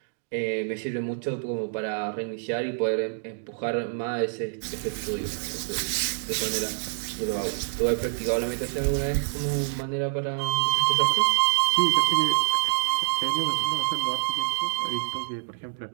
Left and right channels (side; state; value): left; silent; digital silence